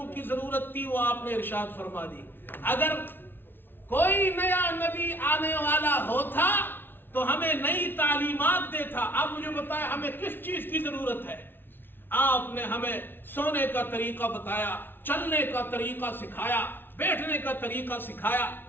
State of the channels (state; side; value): late; right; 0.10 ms